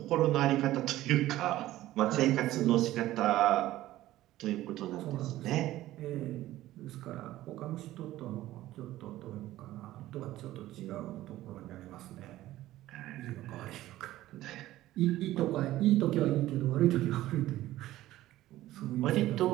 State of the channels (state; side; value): quieter; left; 15.2 dB